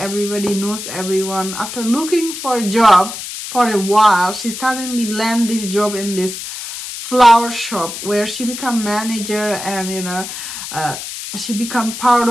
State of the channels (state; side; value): noise; left; hiss, 8 dB below the sound